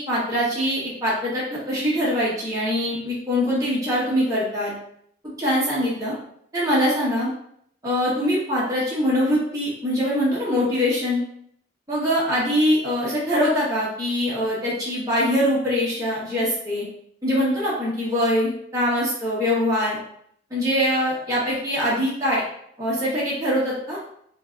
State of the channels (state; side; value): normal; both; correlation 0.37